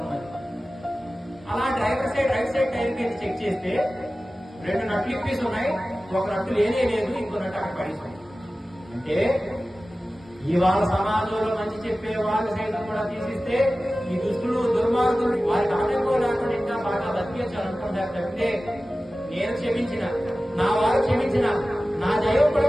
అలా driver side right side tyre కి చెక్ చేస్తే 2 నట్లు ఇప్పేసి ఉన్నాయి, ఒక నట్టు లేనే లేదు, ఇంకో నట్టు అక్కడ పడింది. అంటే ఇవాళ సమాజంలో మంచి చెప్పే వాళ్ళు సైతం కూడా తీసిస్తే ఈ దుష్టులు దుర్మార్గులు వారికి ఆటంకం లేకుండా ఇంకా బాగా బతికేయాలనుకుంటారు తప్పితే నేను క్షమించిన, నా వారు క్షమించిన, నా దైవం కూడా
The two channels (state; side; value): normal; both; correlation 0.96